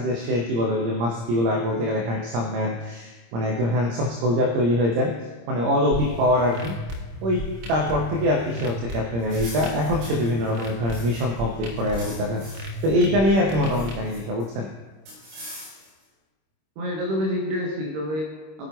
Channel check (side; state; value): left; late; 26 ms